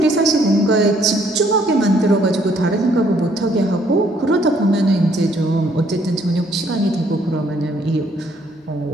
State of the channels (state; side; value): normal; both; correlation 0.66